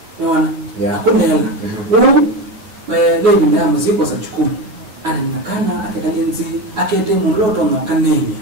unaona akolela lebi nda muziko sa chukumu ana nakana akekalinzi akende muloto no kanenya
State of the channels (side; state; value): left; late; 9.1 ms